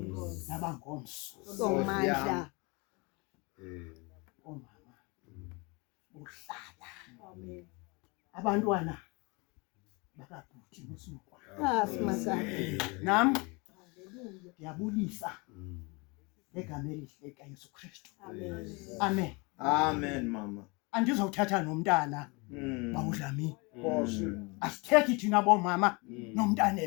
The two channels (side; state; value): right; quieter; 28.3 dB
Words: nabangomso somandla omama uhlala abantwana bakabhuti nosukwa simasabe nami ngiyabulisa ngegama elihle kaYesu Kristu amen Amen mama. Andizothatha nomntana bawudlami asithethi thina bomama nomntana